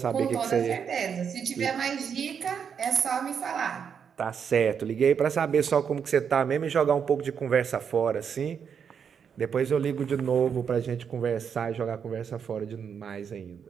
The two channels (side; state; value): left; quieter; 7.2 dB